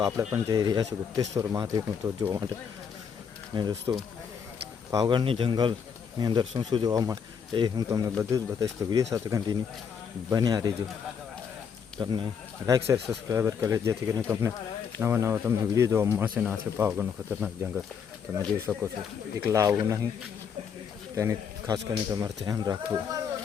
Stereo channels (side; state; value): right; quieter; 6.9 dB